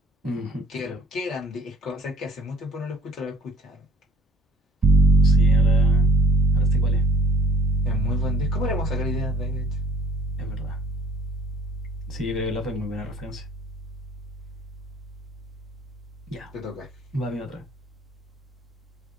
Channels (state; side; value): normal; both; correlation 0.52